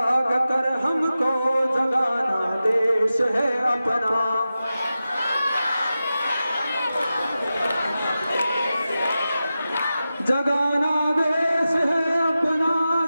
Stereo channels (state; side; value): inverted; both; correlation -0.93